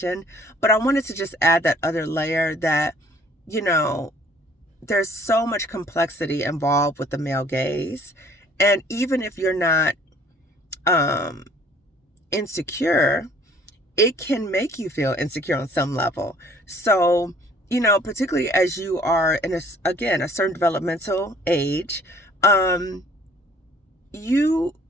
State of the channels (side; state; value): both; normal; correlation 0.56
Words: But I wanted to just add that other layer that, you know, there's so much complexity involved with the male gaze. And even if you're not insecure, it can make you feel insecure on some level. So, you know, particularly as you are in a certain developmental age, you